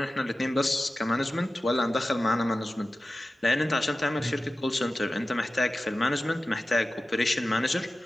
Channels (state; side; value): normal; both; correlation 0.95